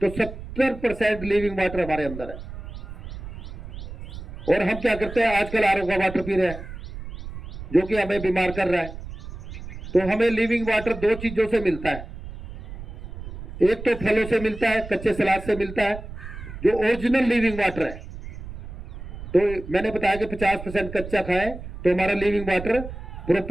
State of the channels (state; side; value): noise; right; rumble, 11 dB below the sound